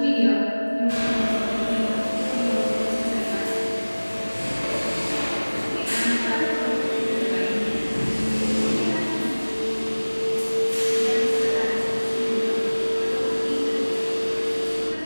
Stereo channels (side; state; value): both; inverted; correlation -1.00